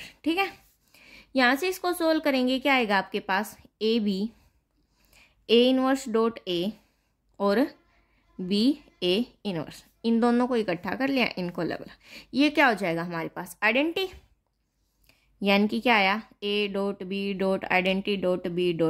ठीक है। यहाँ से इसको सोल्व करेंगे, क्या आएगा आपके पास, A B A inverse dot A और बी ए इनवर्स, इन दोनों को इकट्ठा कर लिया, इनको अलग अलग, ये क्या हो जाएगा हमारे पास आइडेंटिटी, यानी कि क्या आया, a dot b dot identity dot b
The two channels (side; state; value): both; identical; correlation 1.00